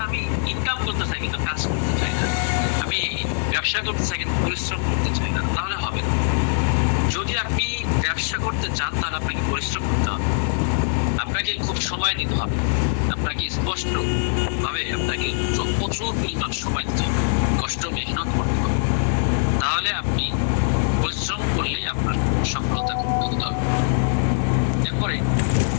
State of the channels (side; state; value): right; silent; 57 dB below the other